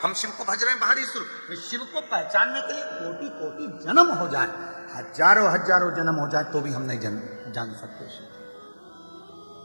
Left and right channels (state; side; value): inverted; both; correlation -1.00